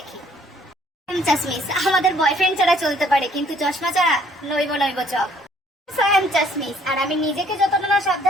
চাশমিশ আমাদের বয়ফ্রেন্ড ছাড়া চলতে পারে কিন্তু চশমা ছাড়া নইব নইব চক। চাশমিশ আর আমি নিজেকে যতটা না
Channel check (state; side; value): normal; both; correlation 0.61